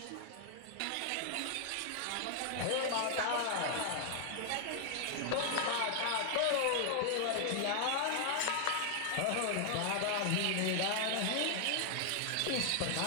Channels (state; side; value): different; both; correlation 0.00